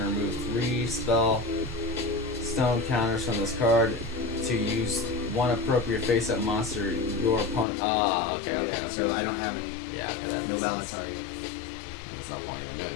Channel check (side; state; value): right; drops out; at 7.7 s